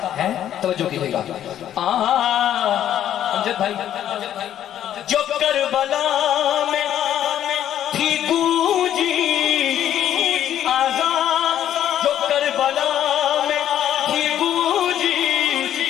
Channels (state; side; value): quieter; right; 10.9 dB